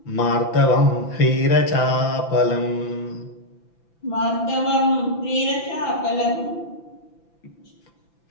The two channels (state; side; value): late; right; 5.9 ms